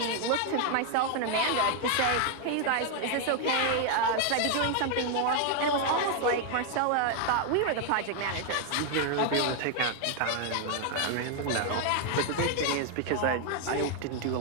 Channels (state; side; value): different; both; correlation 0.00